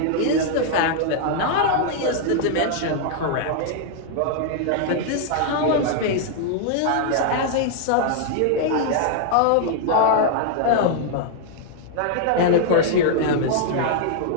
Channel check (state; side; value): different; both; correlation -0.01